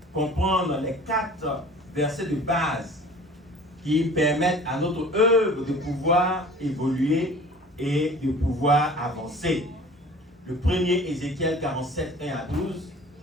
comprendre les 4 versets de base qui permettent à notre œuvre de pouvoir évoluer et de pouvoir avancer. Le premier, Ézéchiel 47, 1 à 12.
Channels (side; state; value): both; normal; correlation 0.45